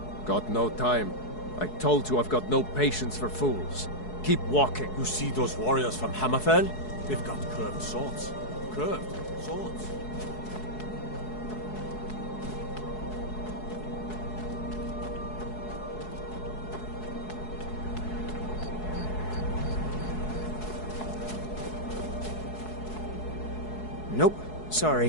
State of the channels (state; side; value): late; right; 4.7 ms